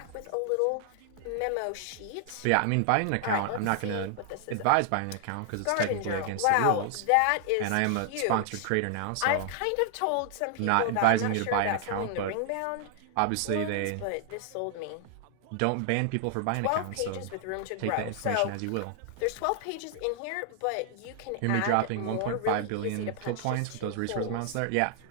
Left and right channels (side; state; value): both; different; correlation 0.00